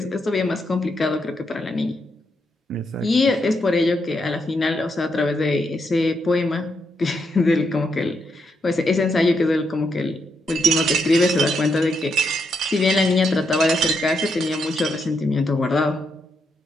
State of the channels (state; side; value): normal; both; correlation 0.80